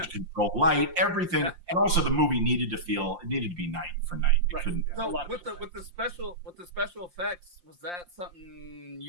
control light, everything, and also the movie needed to be night for night. It couldn't. So with the special effects, was that something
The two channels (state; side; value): late; left; 5.7 ms